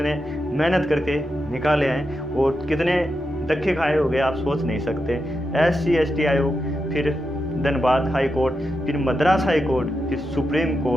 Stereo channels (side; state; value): both; normal; correlation 0.87